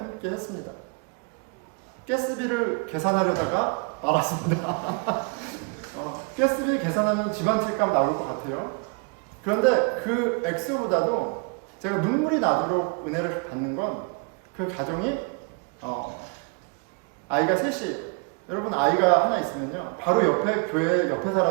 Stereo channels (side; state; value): left; quieter; 33.2 dB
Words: 했습니다. 가스비를 계산하려다가 말았습니다. 가스비 계산하면 집 한 채 값 나올 것 같아요. 그런데 그 액수보다도 제가 눈물이 나도록 은혜를 받는 건 그 가정이 아이가 셋이, 여러분 아이가 하나 있으면요 바로 옆에 교회 옆에